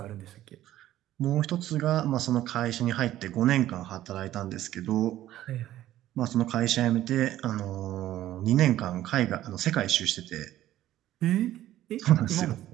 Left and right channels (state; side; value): quieter; left; 13.6 dB